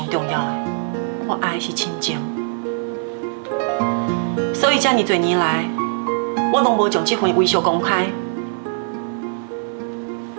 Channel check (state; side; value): silent; left; 57 dB below the other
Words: 重要的，我爱的是亲情。所以，这么多年来，我拢无将这份微笑公开。